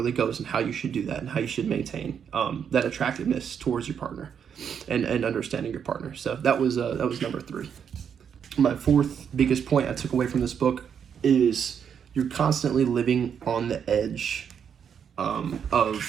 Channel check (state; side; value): quieter; left; 7.7 dB